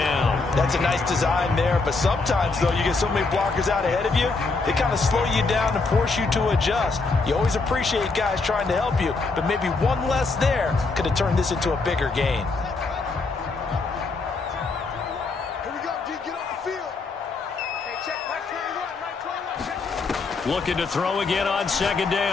That's a nice design there, but sometimes, though, you get so many blockers out ahead of you, they kind of slow you down and force you to adjust. You always appreciate guys trying to help you, but maybe one less there could have turned this into a bigger gain. Looking to throw again on 2nd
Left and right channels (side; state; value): right; quieter; 3.9 dB